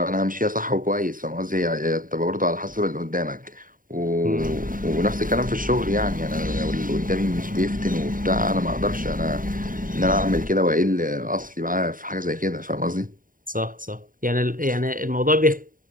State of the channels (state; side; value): late; left; 0.40 ms